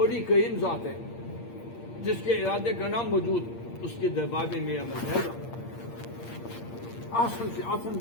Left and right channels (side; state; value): right; late; 8.6 ms